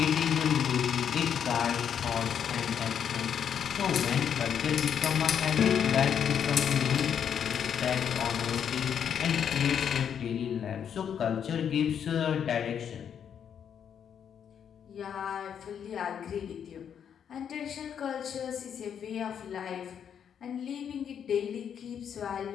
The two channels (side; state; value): right; quieter; 8.3 dB